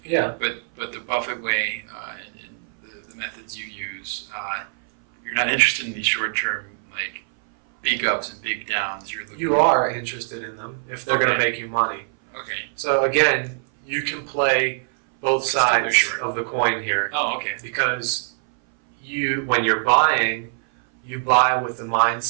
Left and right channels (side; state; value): left; silent; 60 dB below the other